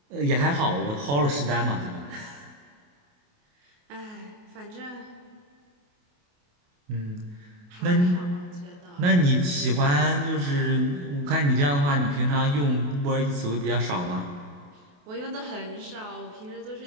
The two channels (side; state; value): left; late; 28 ms